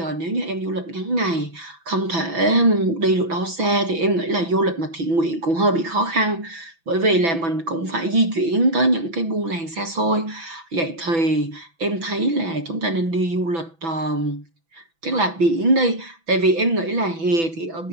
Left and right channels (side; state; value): left; late; 6.0 ms